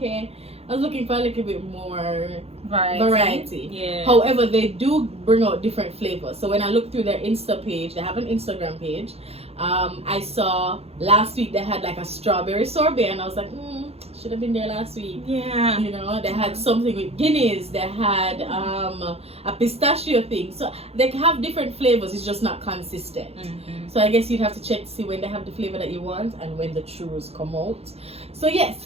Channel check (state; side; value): late; left; 0.29 ms